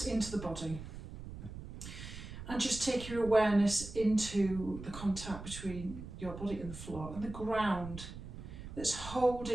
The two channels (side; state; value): right; noise; rumble, 11 dB below the sound